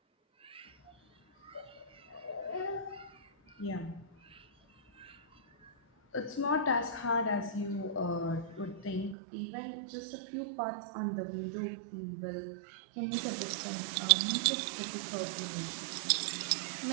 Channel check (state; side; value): drops out; left; at 9.2 s